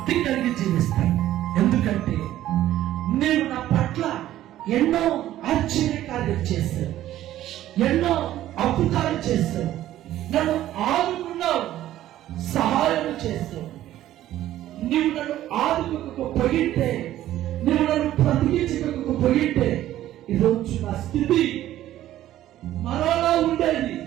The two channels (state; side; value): quieter; left; 13.4 dB